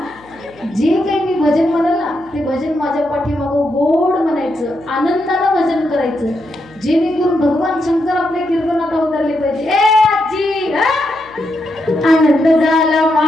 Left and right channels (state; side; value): noise; left; hum, 26 dB below the sound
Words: जे काही मी भजन म्हणेल ना ते भजन माझ्या पाठीमागं गोड म्हणायचं, आनंदानं भजन करायचं, जेणेकरून भगवान शंकर आपल्या कीर्तनात अवतरले पाहिजे. ए आजी आनंद झाला